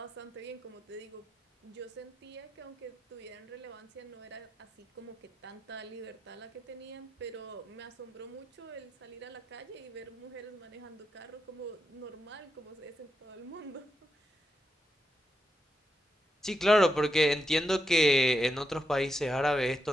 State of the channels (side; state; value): both; normal; correlation 0.85